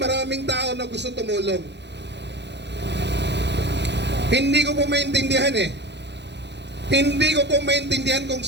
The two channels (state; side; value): late; left; 0.50 ms